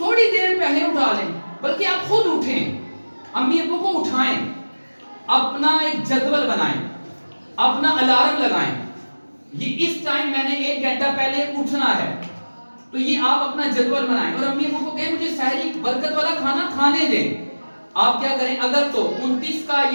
دیر پہلے اٹھا لیں، بلکہ آپ خود اٹھیں. امی ابو کو اٹھائیں، اپنا ایک جدول بنائیں، اپنا الارم لگائیں. یہ اس ٹائم میں نے 1 گھنٹہ پہلے اٹھنا ہے، تو یہ آپ اپنا جدول بنائیں. اور امی ابو کو کہیں مجھے سحری برکت والا کھانا کھانے دیں. آپ کیا کریں، اگر تو 29 کا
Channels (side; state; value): both; inverted; correlation -1.00